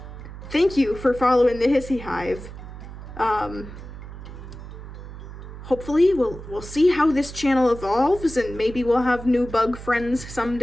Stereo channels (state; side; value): noise; right; hum, 13 dB below the sound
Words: Thank you for following the Hissy Hive. Hopefully we'll see how this channel evolves, and maybe we'll have new bug friends